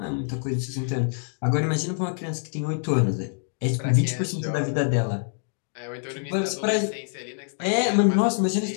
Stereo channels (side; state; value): right; silent; digital silence